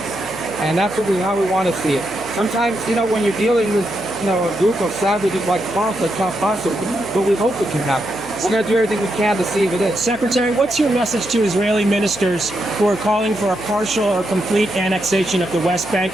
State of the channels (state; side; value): noise; left; hum, 18 dB below the sound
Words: And that's how we want to see it. Sometimes, when you're dealing with, a group of savages like Hamas, it's not possible. But we hope it can happen. We're going to do everything we can to see if it is. Secretary, what's your message to Israeli ministers who are calling for a partial or complete annexation of the West Bank?